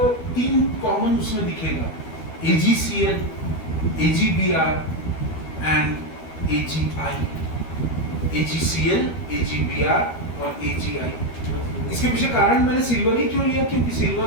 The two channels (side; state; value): right; late; 12 ms